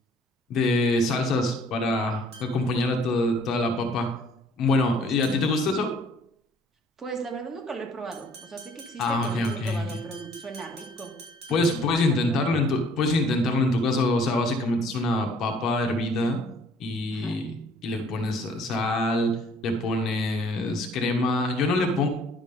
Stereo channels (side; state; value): both; normal; correlation 0.58